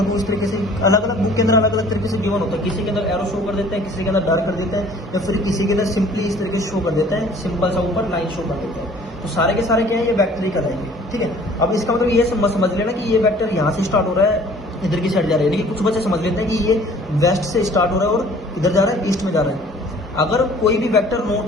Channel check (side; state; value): both; normal; correlation 0.52